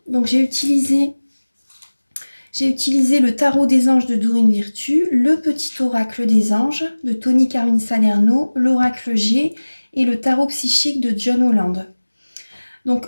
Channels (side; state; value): both; inverted; correlation -1.00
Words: Donc j'ai utilisé le tarot des anges de Dorine Virtue, le petit oracle des anges de Tony Carmine Salerno, l'oracle G et le tarot psychique de John Holland. Donc